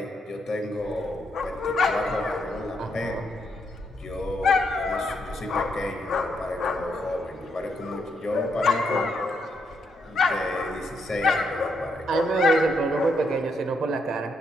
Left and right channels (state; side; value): normal; both; correlation 0.77